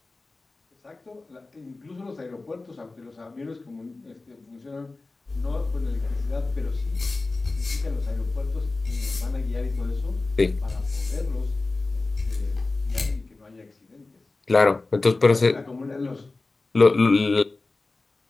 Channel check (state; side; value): quieter; right; 3.4 dB